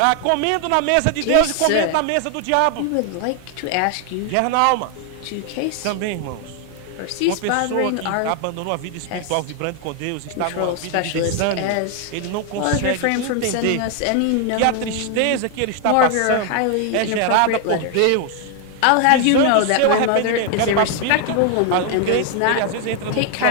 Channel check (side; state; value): both; different; correlation 0.00